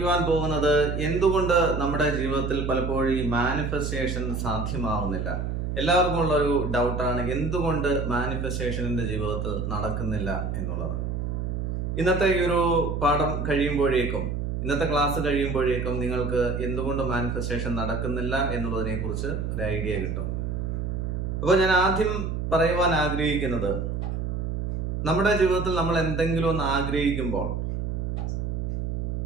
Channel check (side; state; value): right; noise; hum, 2 dB below the sound